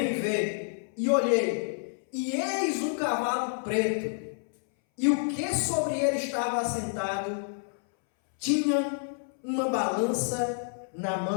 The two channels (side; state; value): right; silent; 59 dB below the other